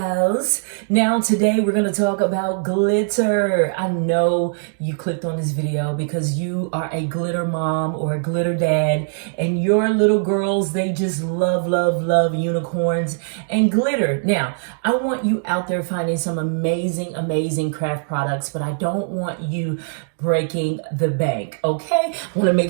Now, today we're going to talk about glitter. I know you clicked on this video because you are a glitter mom or a glitter dad, and your little girls, they just love, love, love unicorns and glitter. Now, I want you out there finding some amazing, amazing craft products, but I don't want you breaking the bank, okay? I want to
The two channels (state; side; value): silent; left; digital silence